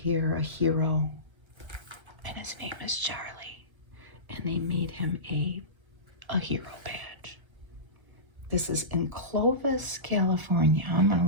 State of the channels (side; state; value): left; late; 1.3 ms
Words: A hero. And his name is Charlie. And they made him a hero badge. This is in Clovis, California. I'm going